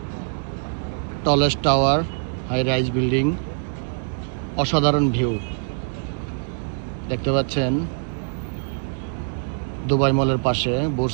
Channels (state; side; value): silent; left; digital silence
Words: tallest tower, high rise building, অসাধারণ ভিউ দেখতে পাচ্ছেন। দুবাই মলের পাশে, বুর্জ